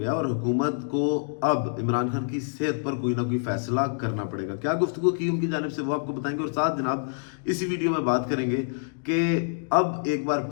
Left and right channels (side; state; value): right; silent; digital silence